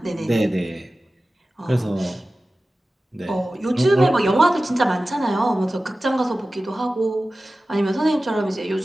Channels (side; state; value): both; normal; correlation 0.96